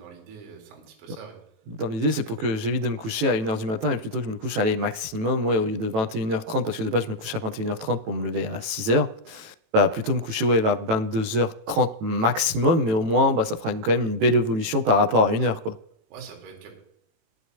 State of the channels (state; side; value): late; left; 18 ms